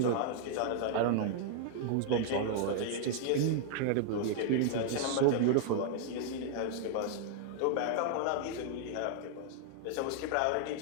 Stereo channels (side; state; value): both; different; correlation -0.01